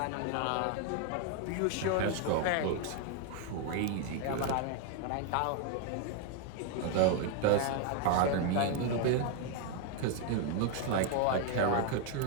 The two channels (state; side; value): different; both; correlation 0.00